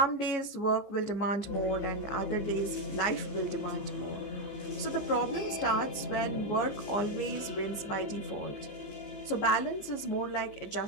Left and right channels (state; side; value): late; right; 15 ms